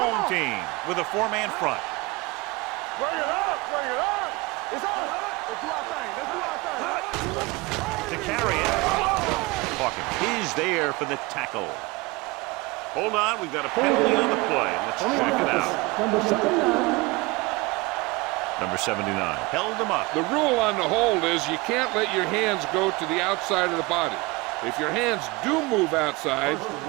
team with a 4-man front. Bring it up, bring it up. It's on. Let's do our thing. Let's do our thing. To carry it. Hawkins is there for the tackle. Hold on, we've got a penalty on the play. Let's On the check it offense, out. number 79. Number 79 held him up. The rule on the hold is you can't let your hands go to the outside of the body. If your hands do move outside,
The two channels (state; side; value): quieter; left; 24.2 dB